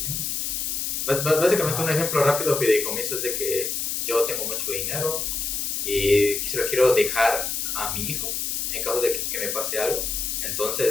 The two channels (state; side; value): noise; left; hiss, 1 dB below the sound